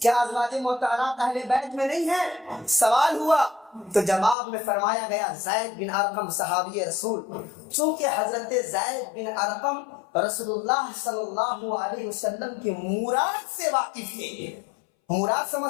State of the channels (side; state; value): right; drops out; at 4.4 s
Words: ازواج مطہرات اہل بیت میں نہیں ہیں؟ سوال ہوا تو جواب میں فرمایا گیا زید بن ارقم صحابی رسول. چونکہ حضرت زید بن ارقم رسول اللہ صلی اللہ علیہ وسلم کی مراد سے واقف تھے. مراد